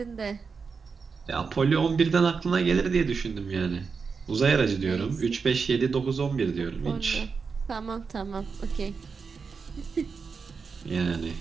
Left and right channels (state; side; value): quieter; left; 5.3 dB